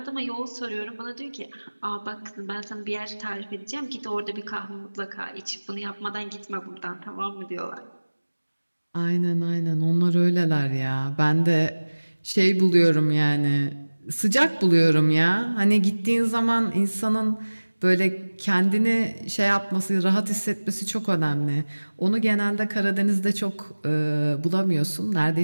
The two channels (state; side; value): inverted; both; correlation -1.00